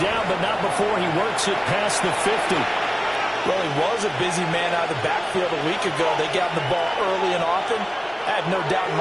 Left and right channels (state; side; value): identical; both; correlation 1.00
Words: but not before he works it past the 50. Well, he was a busy man out of the backfield a week ago. They got the ball early and often. I have no doubt in